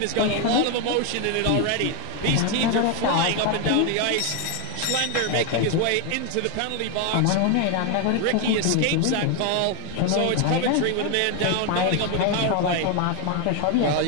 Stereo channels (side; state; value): both; different; correlation 0.01